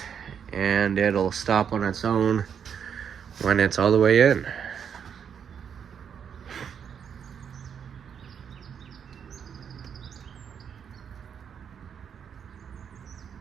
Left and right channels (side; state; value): left; quieter; 7.7 dB